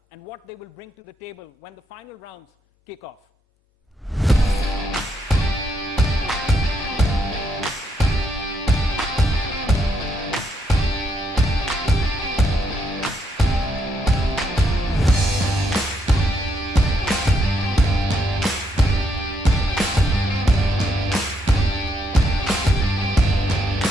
and what they will bring to the table when the final rounds kick off.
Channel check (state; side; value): normal; both; correlation 0.76